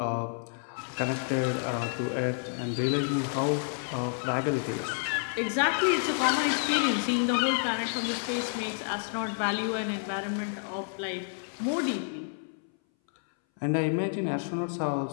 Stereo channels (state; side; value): silent; right; 58 dB below the other